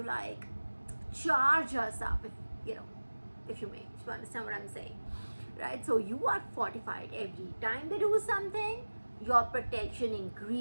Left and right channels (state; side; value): inverted; both; correlation -1.00